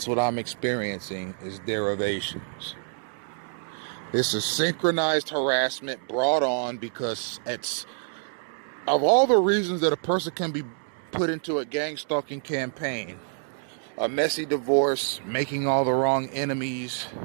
what I'm experiencing, is derivations. This is synchronized harassment brought on because it's, of all the reasons that a person can be put into a gang stalking campaign, a messy divorce, making all the wrong enemies,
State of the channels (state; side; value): silent; left; 60 dB below the other